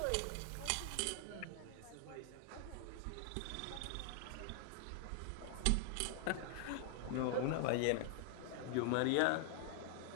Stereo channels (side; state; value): both; different; correlation 0.00